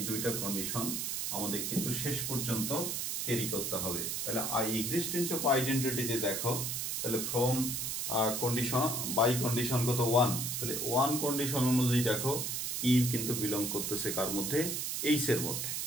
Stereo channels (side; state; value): right; noise; hiss, 1 dB below the sound